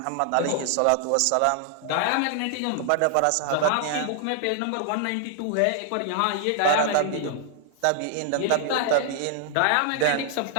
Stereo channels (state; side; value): different; both; correlation 0.00